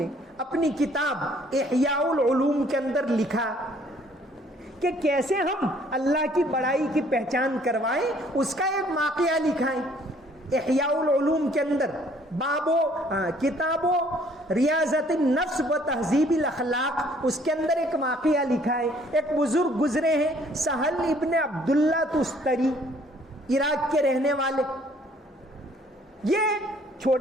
اپنی کتاب احیاء العلوم کے اندر لکھا کہ کیسے ہم اللہ کی بڑائی کی پہچان کروائیں. اس کا ایک واقعہ لکھا ہے احیاء العلوم کے اندر, کتابوں ریاضت النفس و تہذیب الاخلاق, اس کے اندر ایک واقعہ لکھا ہے. ایک بزرگ گزرے ہیں, سہل ابن عبداللہ تستری, عراق کے رہنے والے. یہ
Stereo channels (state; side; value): normal; both; correlation 0.60